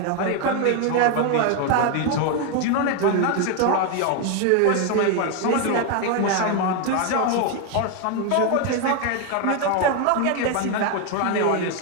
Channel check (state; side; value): different; both; correlation 0.01